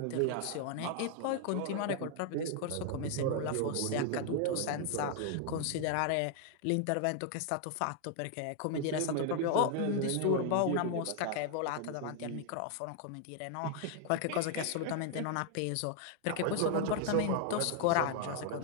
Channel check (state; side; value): different; both; correlation 0.00